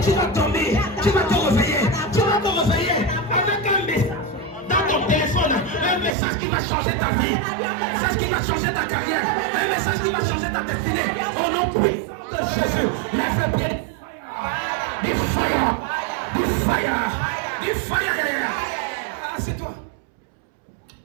tu vas dormir, tu vas te réveiller. Tu vas te réveiller avec un message dans ton téléphone. Un message qui va changer ta vie. Un message qui va changer ta carrière. Un message qui va changer ta destinée. Au nom puissant de Jésus, lève le pied. Du fire. Du fire. Du fire. C'est toi.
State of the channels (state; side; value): drops out; left; at 6.2 s